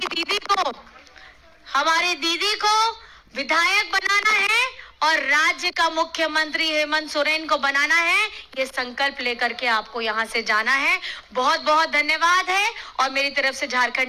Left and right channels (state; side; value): identical; both; correlation 1.00